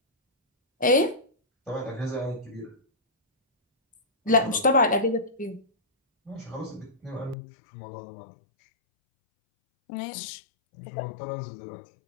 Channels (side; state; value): right; drops out; at 7.4 s